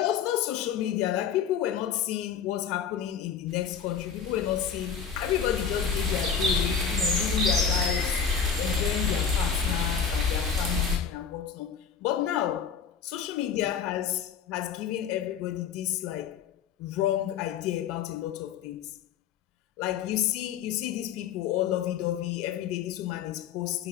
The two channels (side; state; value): right; quieter; 7.2 dB